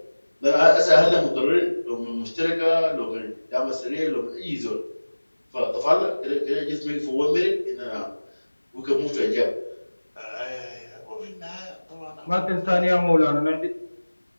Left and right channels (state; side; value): inverted; both; correlation -1.00